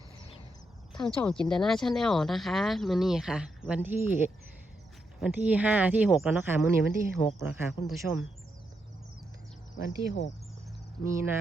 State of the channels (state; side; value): normal; both; correlation 0.82